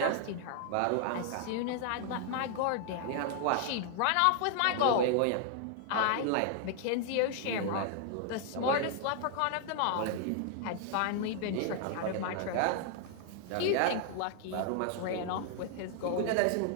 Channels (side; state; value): both; different; correlation 0.00